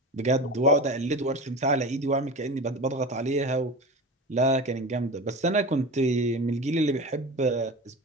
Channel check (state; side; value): normal; both; correlation 0.29